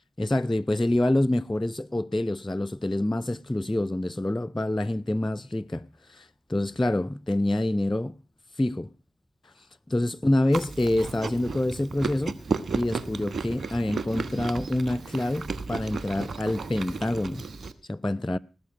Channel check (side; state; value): both; normal; correlation 0.97